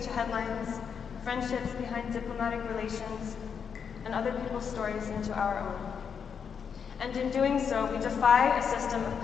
to headlines, friendships behind diplomatic relations, and other people's stories into our own. And in doing so, we defy a system of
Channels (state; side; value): quieter; right; 6.8 dB